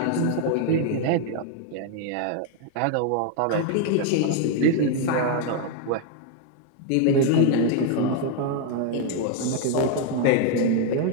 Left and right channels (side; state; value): both; different; correlation 0.00